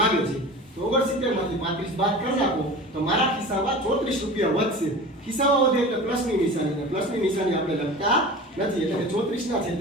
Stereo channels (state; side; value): normal; both; correlation 0.35